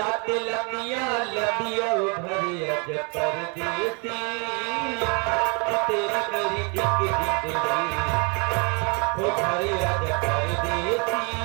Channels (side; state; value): left; quieter; 33.7 dB